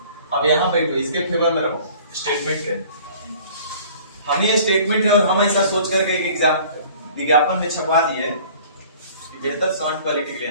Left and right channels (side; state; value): both; inverted; correlation -0.50